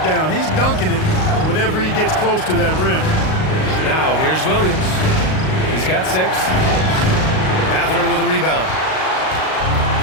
down. He's dunking it whenever he gets close to that rim. Now here's Williams. He's got 6. Mathurin with a rebound.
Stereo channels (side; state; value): right; late; 38 ms